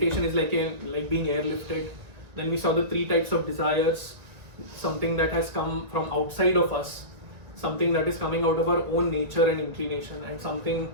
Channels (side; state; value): left; late; 1.7 ms